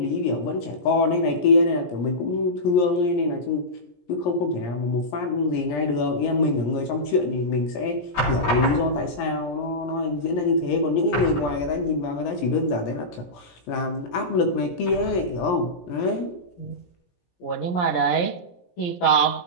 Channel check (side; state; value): right; late; 17 ms